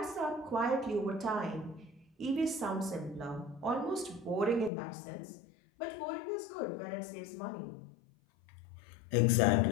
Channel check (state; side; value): drops out; right; at 4.7 s